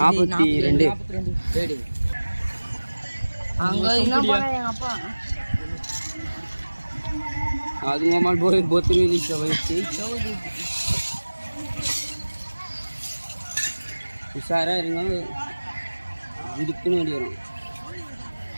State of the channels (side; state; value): both; inverted; correlation -1.00